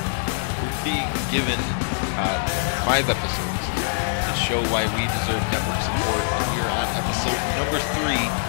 we're being given 5 episodes to show why we deserve network support. We are on episode number 3,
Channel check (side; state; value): right; silent; digital silence